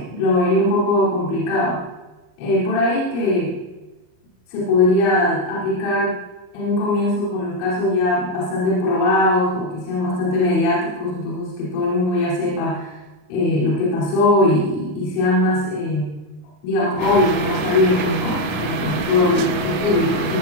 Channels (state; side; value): late; right; 33 ms